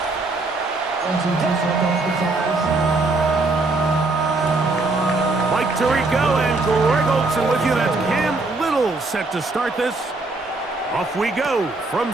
Mike Tirico and Greg Olsen with you. That's Cam Little set to start this. Off we go from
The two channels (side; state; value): left; quieter; 3.3 dB